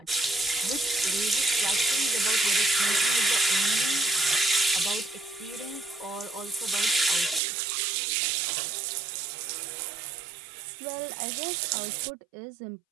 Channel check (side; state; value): left; drops out; at 7.4 s